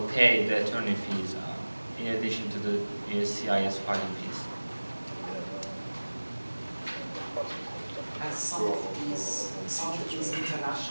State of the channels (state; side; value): inverted; both; correlation -1.00